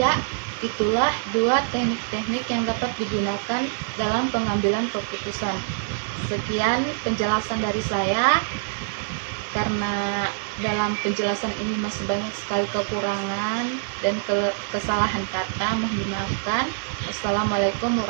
itulah dua teknik-teknik yang dapat digunakan dalam pengambilan keputusan. Sekian penjelasan dari saya. Karena dalam penjelasan ini masih banyak sekali kekurangan dan kesalahan kata, mohon dimaafkan. Wassalamualaikum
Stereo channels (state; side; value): silent; left; digital silence